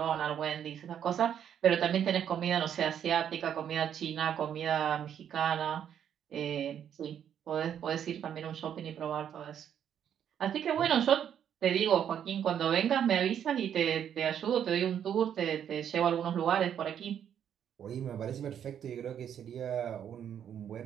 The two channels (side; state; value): left; quieter; 9.1 dB